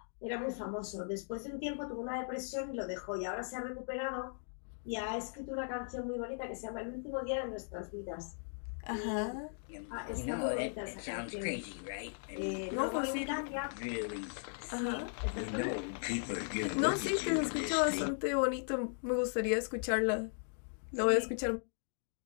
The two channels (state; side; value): silent; right; digital silence